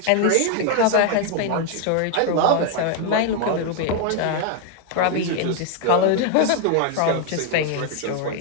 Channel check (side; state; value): both; different; correlation 0.00